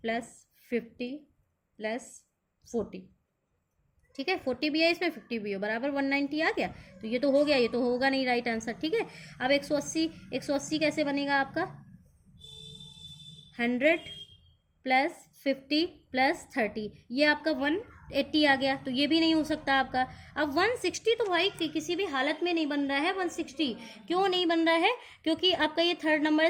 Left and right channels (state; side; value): identical; both; correlation 1.00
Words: + 50 + 40, ठीक है। 40 भी है इसमें, 50 भी हो, बराबर 190 आ गया। तो ये तो हो गया, ये तो होगा नहीं राइट आंसर, ठीक है। अब 180 कैसे बनेगा आपका, 100 + 50 + 30, ये आपका 180 आ गया। तो ये भी नहीं हो सकता आपका। अब 160 तो भाई किसी भी हालत में नहीं बन रहा है। 160 क्यों नहीं बन रहा है, क्योंकि आपका ये थर्ड नंबर